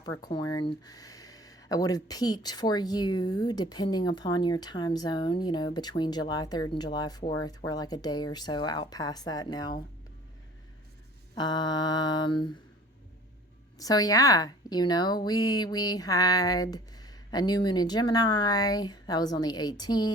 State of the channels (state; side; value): normal; both; correlation 0.48